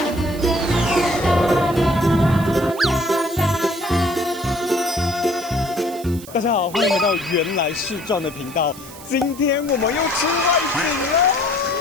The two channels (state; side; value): noise; right; hiss, 17 dB below the sound